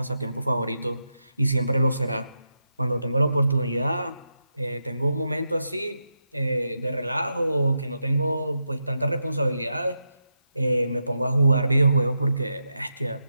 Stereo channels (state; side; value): inverted; both; correlation -0.86